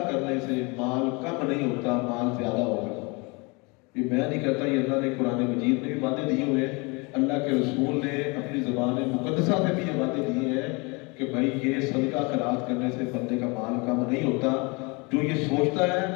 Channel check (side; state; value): right; quieter; 28.6 dB